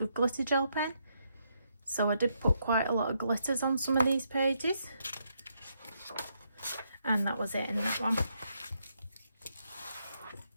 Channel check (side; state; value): both; inverted; correlation -0.78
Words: glitter gel pen, so I did put quite a lot of glitters on some of these pages, and that was it in that one.